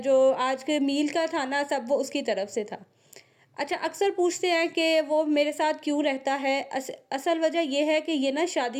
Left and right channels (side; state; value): both; identical; correlation 1.00